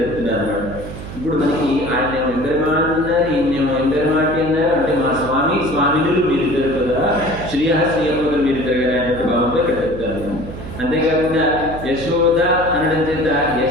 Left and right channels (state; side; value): noise; right; hum, 11 dB below the sound